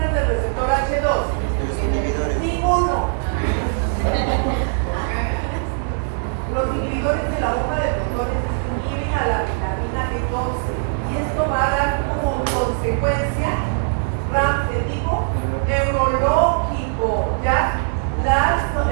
del receptor H2? Ninguno. Los inhibidores de la bomba de protones inhiben a la vitamina B12 y esto va a dar como consecuencia RAMS de tipo neurológico, ¿ya?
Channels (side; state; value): left; silent; digital silence